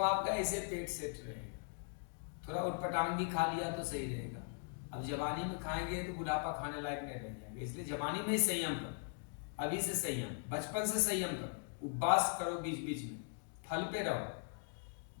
ऐसे पेट सेट रहेगा। थोड़ा उटपटांग भी खा लिया तो सही रहेगा। अब जवानी में खाएंगे तो बुढ़ापा खाने लायक नहीं रह जाएंगे, इसलिए जवानी में ही संयम करो, अभी से संयम, बचपन से संयम करो, उपवास करो, बीच बीच में फल पे रहो,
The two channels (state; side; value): silent; right; 51 dB below the other